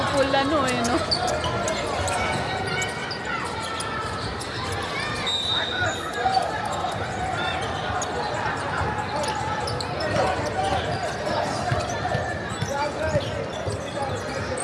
ano eh, no?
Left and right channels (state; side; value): identical; both; correlation 1.00